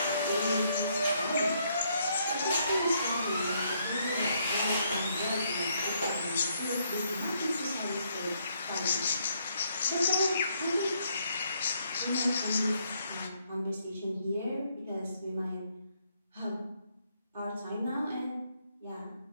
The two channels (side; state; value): both; inverted; correlation -0.72